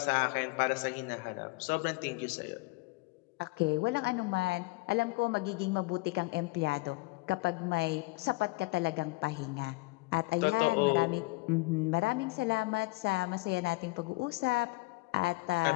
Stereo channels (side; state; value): right; quieter; 24.8 dB